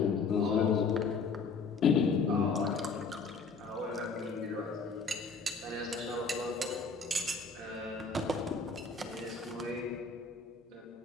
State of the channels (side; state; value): right; quieter; 4.5 dB